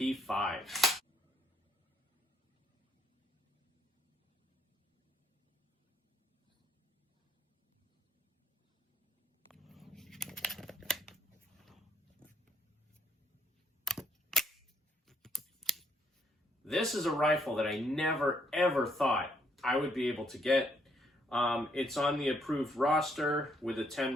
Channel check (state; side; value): normal; both; correlation 0.70